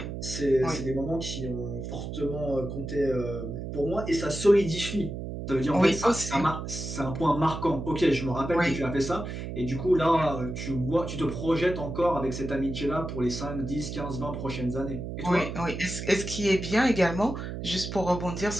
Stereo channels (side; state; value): right; noise; hum, 6 dB below the sound